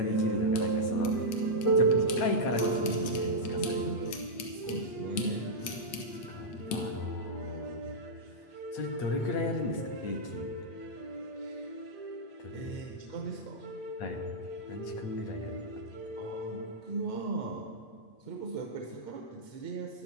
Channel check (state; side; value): late; right; 8.5 ms